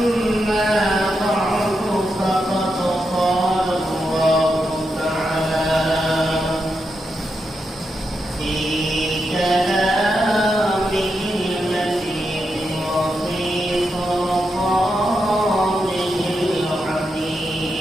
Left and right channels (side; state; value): both; normal; correlation 0.85